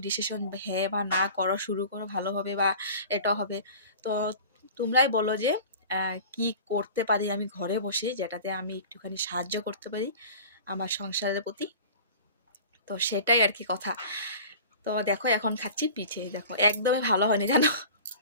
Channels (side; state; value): both; inverted; correlation -0.40